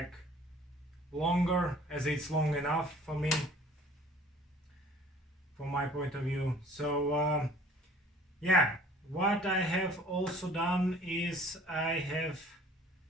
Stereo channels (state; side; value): normal; both; correlation 0.51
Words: longer, as it's long enough for me, from my point of view. So yeah, what I have also done is I have